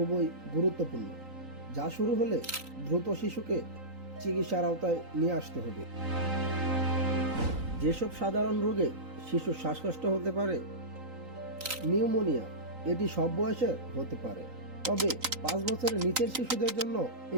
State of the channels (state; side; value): late; left; 3.9 ms